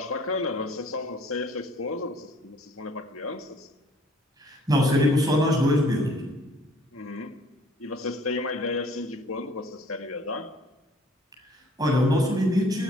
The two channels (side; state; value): both; normal; correlation 0.57